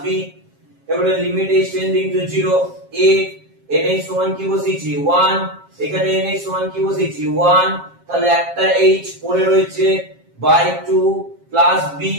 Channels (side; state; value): left; late; 7.4 ms